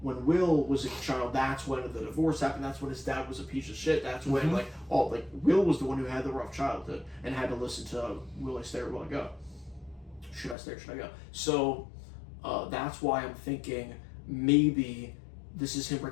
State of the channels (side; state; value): right; drops out; at 10.6 s